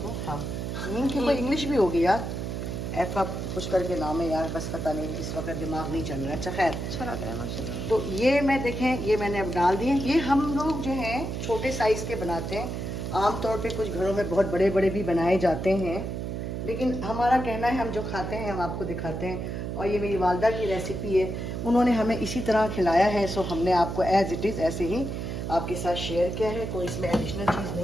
हाँ हींग की कोई इंग्लिश भी होगी यार, ऐसा कुछ करके नाम है यार, बस पता नहीं, इस वक्त दिमाग नहीं चल रहा है। अच्छा खैर, अच्छा लग रहा है माशाल्लाह। तो ये मैं देखें, ये मैंने अब डाल दिए। ये हम लोग जो हैं छोटे साइज़ के बनाते हैं, आमतौर पे कुछ घरों में बहुत बड़े बड़े भी बनाए जाते हैं, लेकिन हमारा कहना है हम जो खाते हैं हम आपको दिखाते हैं। और ये मेरी वालदा की रेसिपी है, उन्होंने हमें इसी तरह खिलाया है, सो हमने आपको एज़ इट इज़ ऐसे ही आपके साथ शेयर किया है। कोई इसमें एडिशनल चीज़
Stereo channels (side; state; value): right; noise; hum, 4 dB below the sound